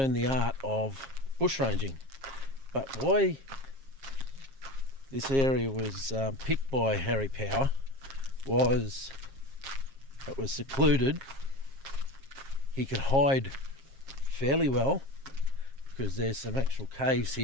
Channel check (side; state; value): left; late; 7.4 ms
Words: the art of bushranging. But why this area was picked by Harry Power was it was secluded. He could hide fairly well because there's some actual caves